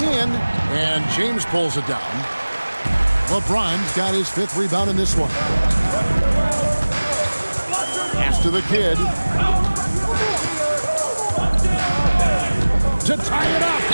And James pulls it down. LeBron's got his 5th rebound in this one. Pass to the Kid. to tie it up.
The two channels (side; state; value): both; inverted; correlation -1.00